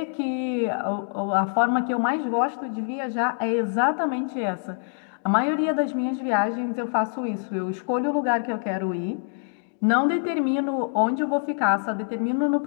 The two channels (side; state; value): right; silent; 62 dB below the other